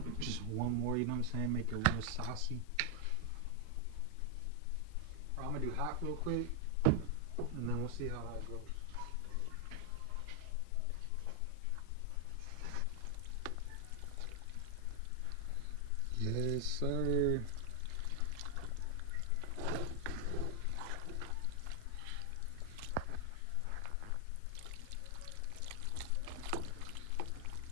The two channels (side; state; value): both; different; correlation 0.00